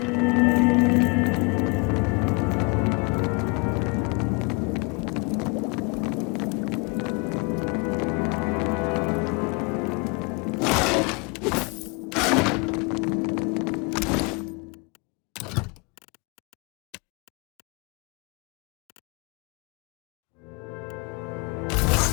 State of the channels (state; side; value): quieter; right; 30.8 dB